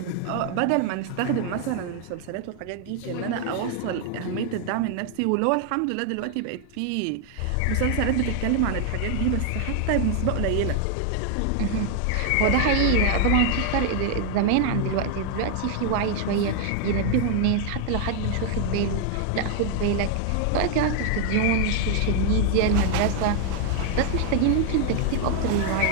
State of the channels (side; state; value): both; different; correlation 0.00